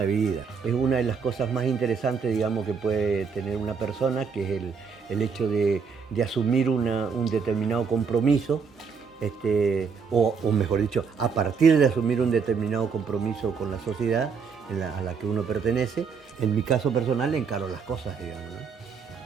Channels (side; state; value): left; quieter; 5.8 dB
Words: vida. Es una de las cosas más interesantes, digamos, que puede tener una persona, que es el hecho de asumir un determinado compromiso, o mejor dicho, a partir de asumir un determinado compromiso con la sociedad a la que uno pertenece. En mi caso personal encaro las cosas, digamos, ¿no?